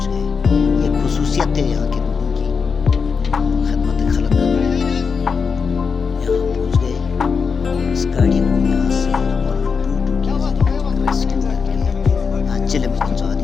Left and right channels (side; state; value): right; quieter; 5.6 dB